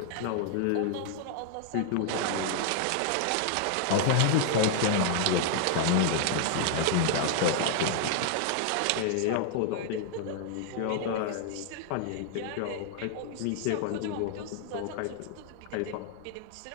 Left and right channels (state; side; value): different; both; correlation 0.00